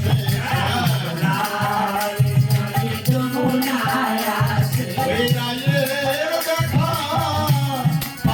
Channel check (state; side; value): identical; both; correlation 1.00